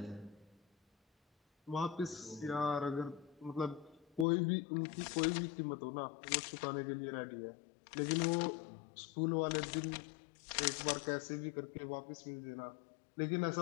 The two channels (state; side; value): drops out; right; at 4.2 s